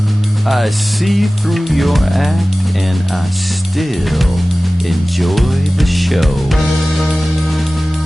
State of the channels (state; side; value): normal; both; correlation 0.97